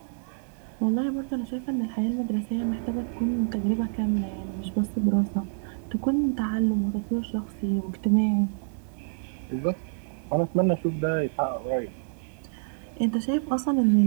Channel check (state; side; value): silent; left; digital silence